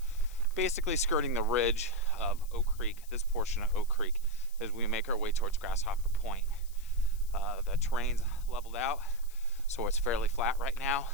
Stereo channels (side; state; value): left; noise; hiss, 21 dB below the sound